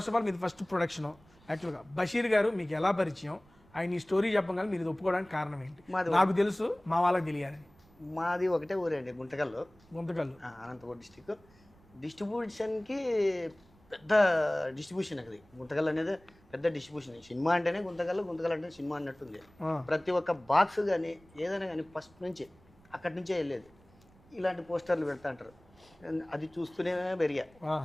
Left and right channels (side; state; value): right; noise; rumble, 28 dB below the sound